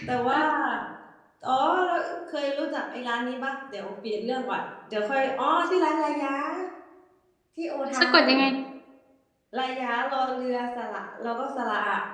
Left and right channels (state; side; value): identical; both; correlation 1.00